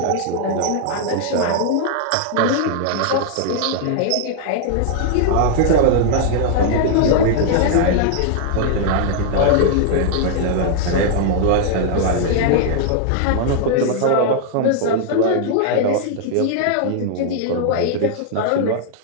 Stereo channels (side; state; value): both; different; correlation -0.01